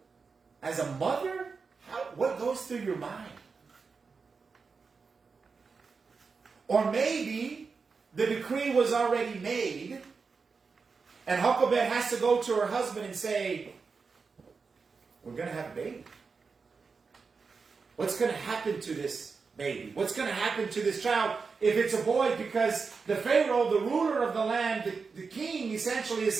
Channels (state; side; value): quieter; left; 4.9 dB